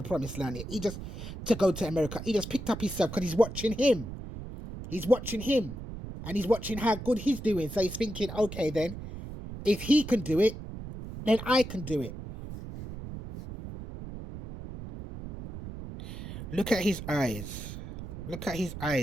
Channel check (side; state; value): right; noise; rumble, 10 dB below the sound